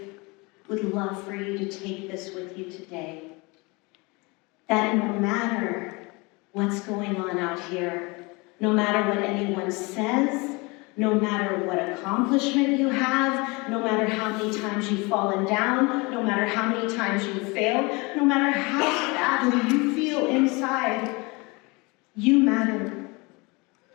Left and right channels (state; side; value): quieter; right; 26.6 dB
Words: would love for you to take this with you today. That no matter what's going on out here, no matter what anyone says, no matter what accomplishment you have, no matter how many times you've fallen down, no matter how many times you've failed, no matter how badly you feel inside, you matter.